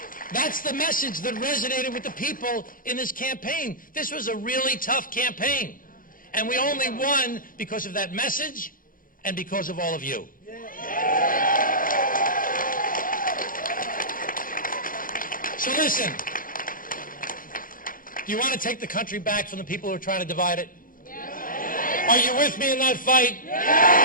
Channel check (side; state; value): right; late; 0.40 ms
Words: That's the message that resonated with the people in this campaign. This was a really tough campaign. And we only won because of that message and because of all of you. So listen, do you want to take the country back from the people who are trying to divide it? Are you with me in that fight?